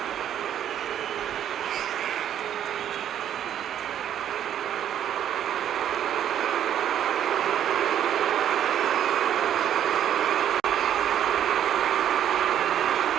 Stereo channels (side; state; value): left; quieter; 10.2 dB